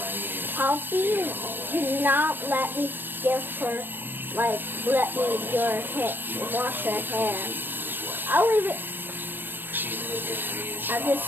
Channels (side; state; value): left; late; 0.095 ms